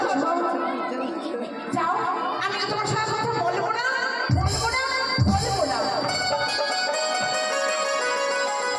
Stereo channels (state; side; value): identical; both; correlation 1.00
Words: যাও, আমি আর তোমার সাথে কথা বলবো না, বলবো না, বলবো না।